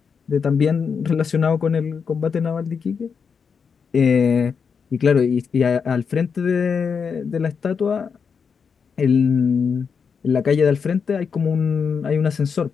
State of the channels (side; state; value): right; quieter; 6.1 dB